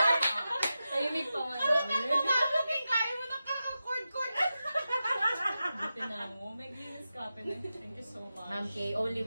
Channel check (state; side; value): inverted; both; correlation -0.92